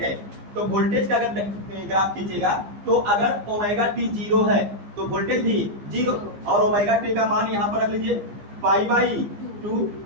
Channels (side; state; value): left; late; 15 ms